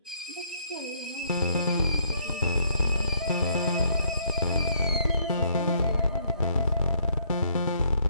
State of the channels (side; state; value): both; inverted; correlation -0.67